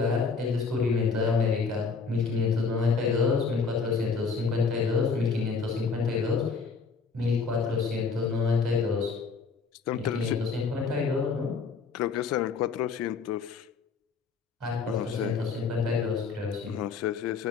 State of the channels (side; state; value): right; quieter; 5.0 dB